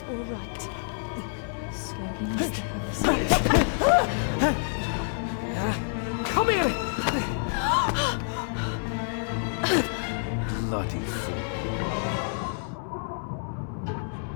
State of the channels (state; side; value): silent; right; 59 dB below the other